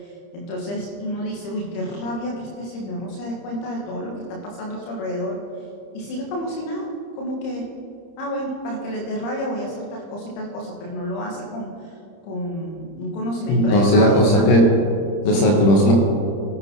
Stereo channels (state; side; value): late; right; 30 ms